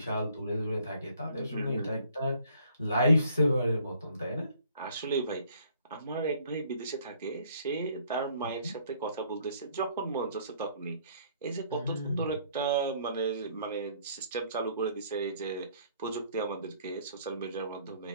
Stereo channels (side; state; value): both; inverted; correlation -0.60